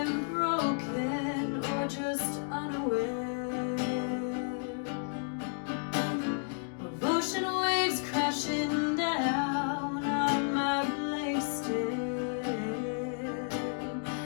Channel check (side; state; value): right; silent; 56 dB below the other